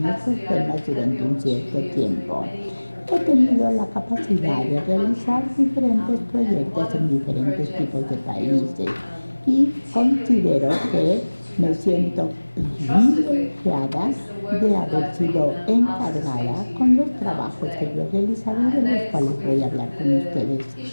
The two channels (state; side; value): inverted; both; correlation -1.00